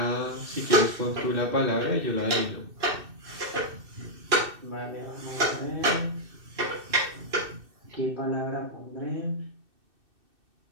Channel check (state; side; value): late; left; 2.6 ms